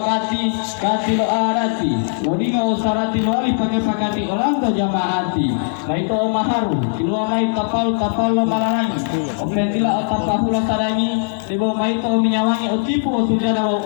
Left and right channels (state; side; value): silent; right; 64 dB below the other